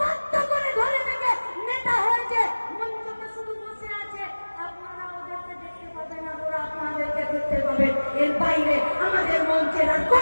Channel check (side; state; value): both; inverted; correlation -1.00